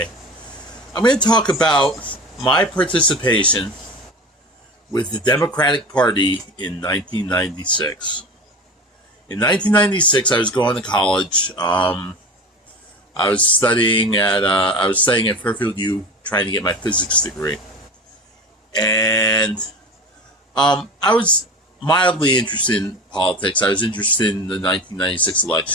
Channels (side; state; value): both; normal; correlation 0.31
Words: I'm going to talk about my participation with the Democratic Party in 1996. In 1996, I was going to college. I was studying at Fairfield U, trying to get my physics degree, and I was mildly interested in politics. I was interested in the 1996